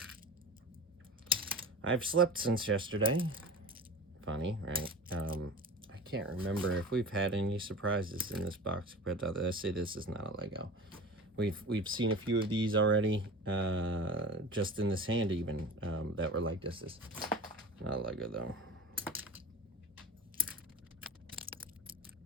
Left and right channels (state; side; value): normal; both; correlation 0.34